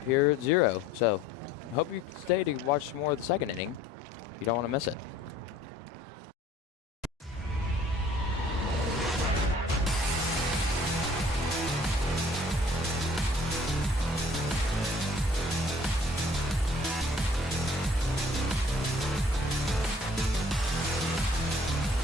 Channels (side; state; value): both; normal; correlation 0.55